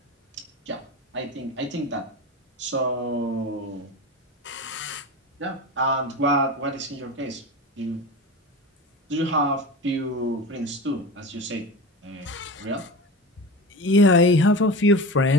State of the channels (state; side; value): normal; both; correlation 0.29